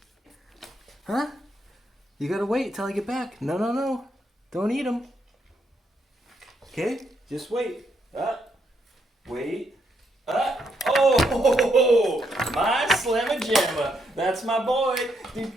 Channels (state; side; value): normal; both; correlation 0.76